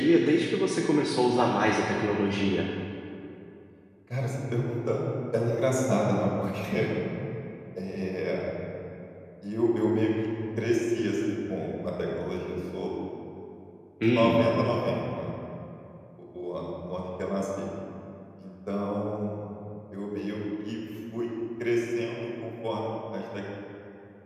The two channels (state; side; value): identical; both; correlation 1.00